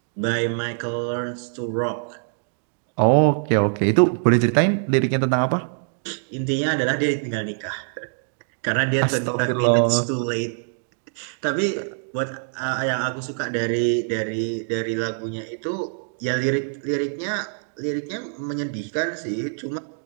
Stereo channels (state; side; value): silent; left; digital silence